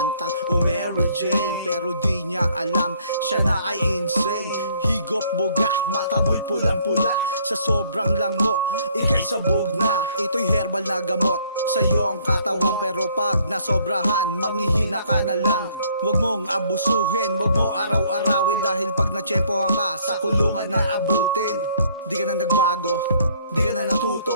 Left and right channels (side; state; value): both; inverted; correlation -0.63